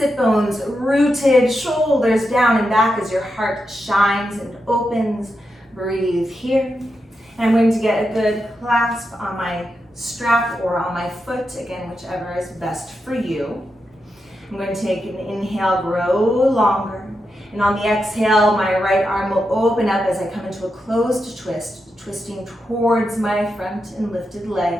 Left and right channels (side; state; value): both; normal; correlation 0.87